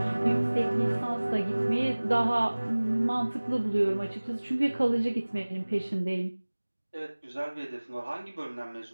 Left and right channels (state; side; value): inverted; both; correlation -1.00